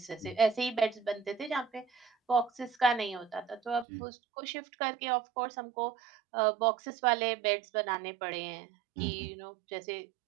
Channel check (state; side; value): drops out; left; at 3.9 s